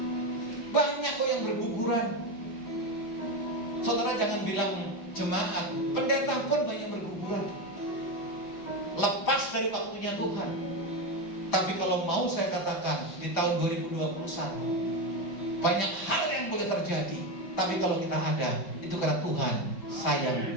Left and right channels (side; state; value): right; late; 5.1 ms